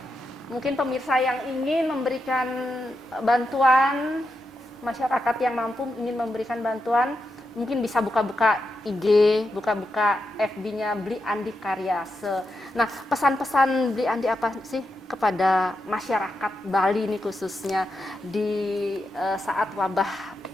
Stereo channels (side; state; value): both; normal; correlation 0.86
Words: mungkin pemirsa yang ingin memberikan bantuan, masyarakat yang mampu ingin memberikan bantuan, mungkin bisa buka-buka IG, buka-buka FB-nya Beli Andi Karyase. Nah, pesan-pesan Beli Andi apa sih kepada masyarakat Bali ini khususnya di saat wabah